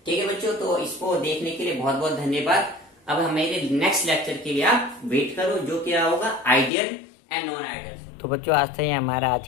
ठीक है बच्चों, तो इसको देखने के लिए बहुत बहुत धन्यवाद। अब हमारे नेक्स्ट लेक्चर के लिए आप वेट करो, जो क्या होगा आइडियल एंड नॉन आइडियल। तो बच्चों आज से ही हमारा आज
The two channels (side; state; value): right; drops out; at 6.7 s